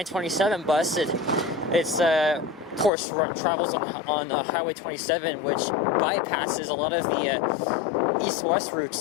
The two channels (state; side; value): drops out; right; at 2.9 s